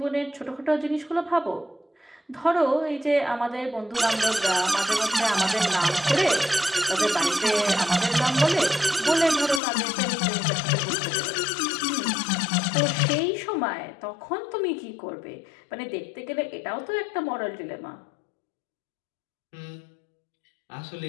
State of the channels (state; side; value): drops out; right; at 9.6 s